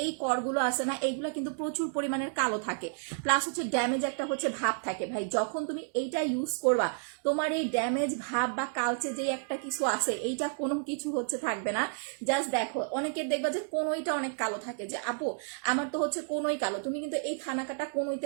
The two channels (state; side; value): silent; left; digital silence